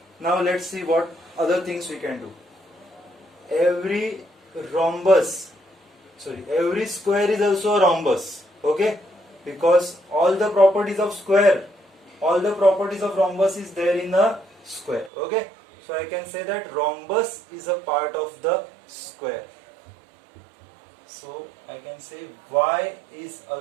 Now let's see what other things we can do. Every square is also a rhombus. Okay, because all the properties of square, all the properties of rhombus is there in a square. Okay, so I can say that rhombus is a part of the square. So I can say Y is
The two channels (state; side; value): drops out; left; at 15.1 s